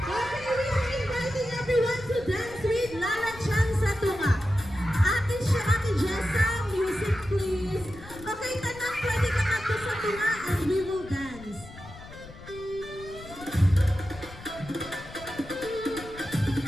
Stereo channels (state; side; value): noise; left; rumble, 17 dB below the sound